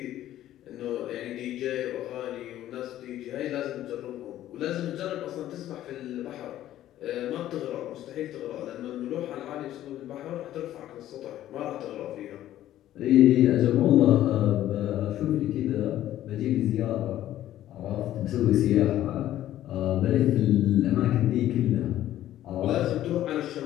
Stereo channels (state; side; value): quieter; right; 13.0 dB